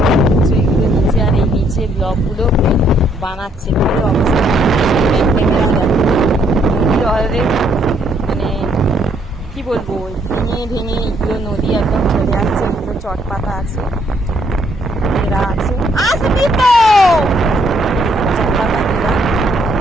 হচ্ছে এগুলো নিচে, আর এই নিচে ব্লকগুলো বানাচ্ছে। কি অবস্থা নদীর অলরেডি মানে কি বলবো, ভেঙে ভেঙে এগুলো নদী একদম চলে আসছে। এগুলো চটপাতা আছে, এরা আছে চটপাতা এরা।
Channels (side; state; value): both; normal; correlation 0.69